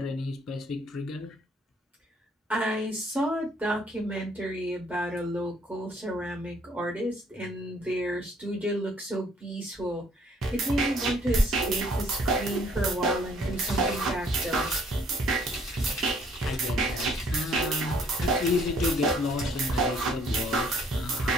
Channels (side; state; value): both; normal; correlation 0.62